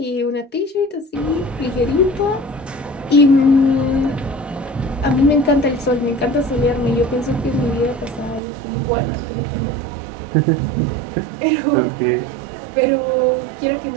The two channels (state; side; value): drops out; left; at 8.4 s